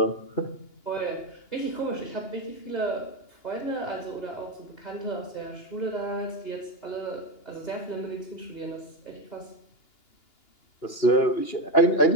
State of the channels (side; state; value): right; late; 2.8 ms